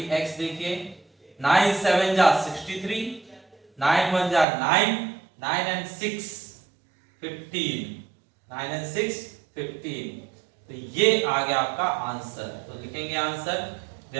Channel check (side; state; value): left; drops out; at 4.5 s